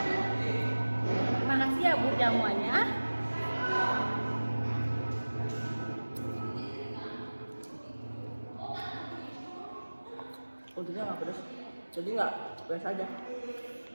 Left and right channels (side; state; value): both; inverted; correlation -1.00